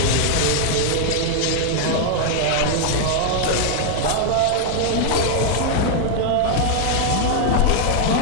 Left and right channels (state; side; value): different; both; correlation 0.00